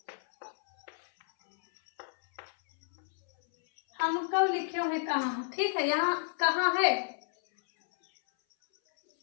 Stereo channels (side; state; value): right; silent; 57 dB below the other